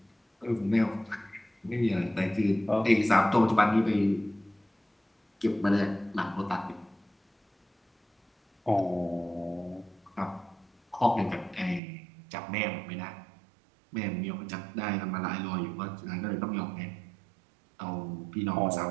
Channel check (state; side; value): drops out; left; at 11.8 s